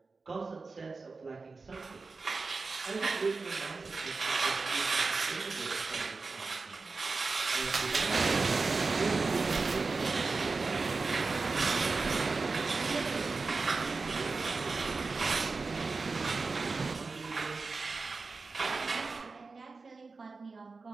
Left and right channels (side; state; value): left; quieter; 4.1 dB